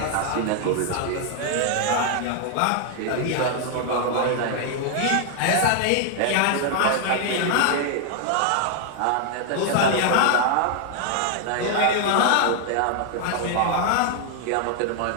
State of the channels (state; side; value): different; both; correlation 0.00